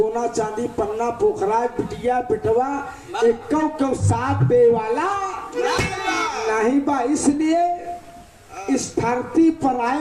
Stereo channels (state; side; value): identical; both; correlation 1.00